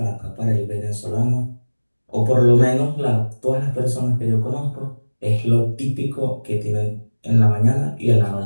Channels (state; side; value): inverted; both; correlation -1.00